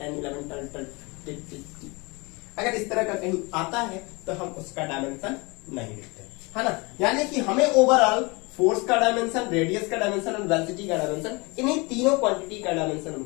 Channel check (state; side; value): quieter; right; 27.0 dB